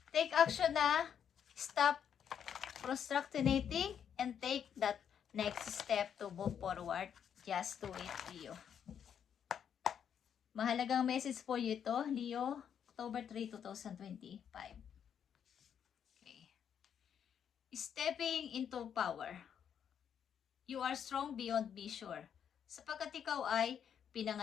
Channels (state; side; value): quieter; right; 8.3 dB